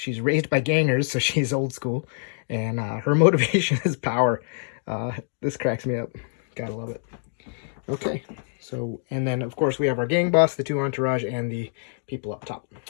raised by gangers, so she's old school, and her motivation is power. This cracks me up. Gotta love it. Okay. So, and then, of course, we have our gang boss, the two entourage, and the people up top.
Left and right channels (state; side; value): silent; right; digital silence